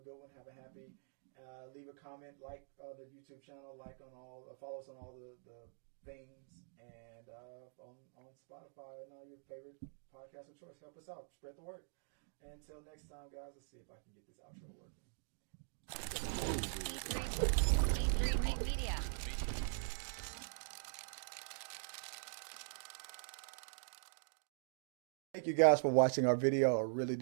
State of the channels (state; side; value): silent; left; digital silence